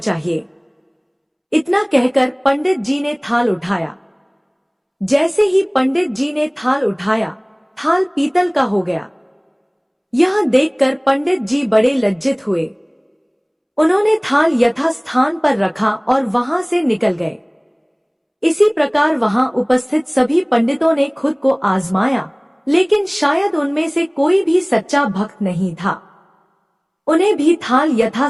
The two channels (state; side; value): identical; both; correlation 1.00